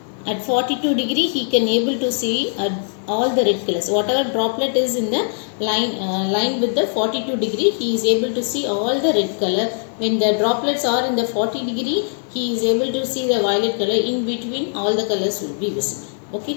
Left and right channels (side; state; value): right; silent; 57 dB below the other